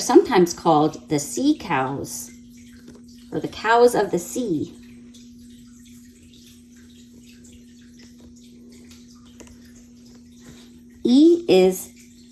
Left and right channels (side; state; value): both; identical; correlation 1.00